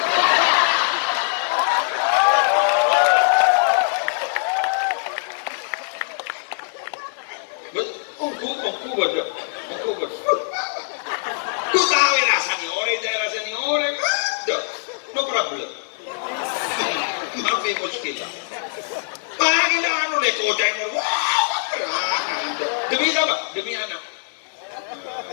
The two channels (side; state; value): right; silent; digital silence